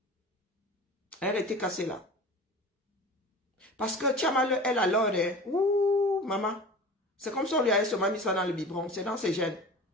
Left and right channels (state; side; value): normal; both; correlation 0.37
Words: Elle était cassée là. Parce que Tchamal, elle alors, ouh, maman, c'est comme si on lui avait seulement mis ça dans le biberon, c'est dans ses gènes.